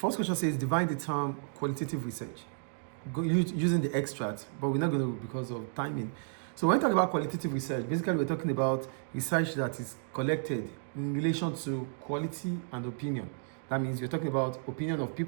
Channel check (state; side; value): silent; left; digital silence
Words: question says, define the term qualitative research. Using the extract, but we're not going to because of timing. So when we talk about qualitative research, basically we're talking about research that is collected in relation to quality and opinion. That means you're talking about opinion of